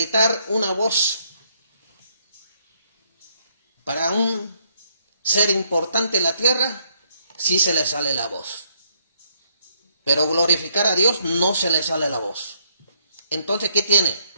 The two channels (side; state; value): both; inverted; correlation -0.72